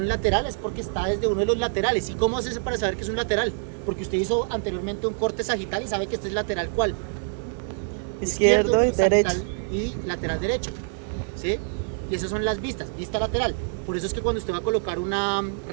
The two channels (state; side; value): silent; left; 61 dB below the other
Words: lateral es porque está desde uno de los laterales. ¿Y cómo hace eso para saber que es un lateral? Porque usted hizo anteriormente un corte sagital y sabe que este es lateral ¿cuál? Izquierdo y derecho. sagital y lateral derecho, ¿sí? Y esas son las vistas, vista lateral. Por eso es que cuando usted va a colocar una